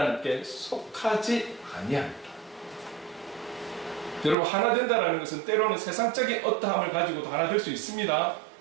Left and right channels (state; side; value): drops out; left; at 4.4 s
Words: 속하지 아니하니라. 여러분, 하나 된다는 것은 때로는 세상적인 어떠함을 가지고도 하나 될 수 있습니다.